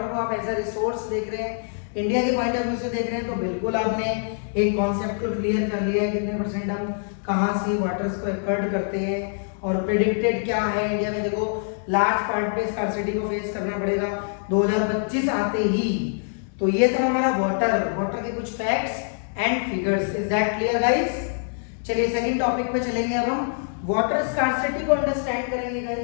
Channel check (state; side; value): silent; right; digital silence